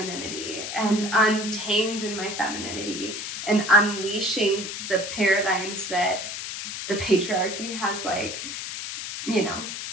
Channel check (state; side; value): noise; left; hiss, 6 dB below the sound